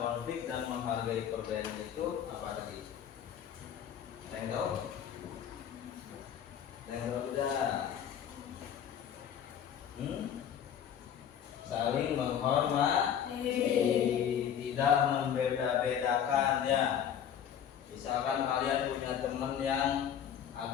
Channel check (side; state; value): right; quieter; 9.1 dB